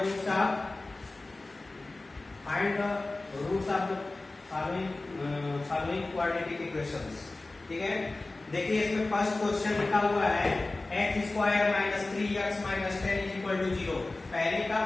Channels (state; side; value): quieter; right; 3.1 dB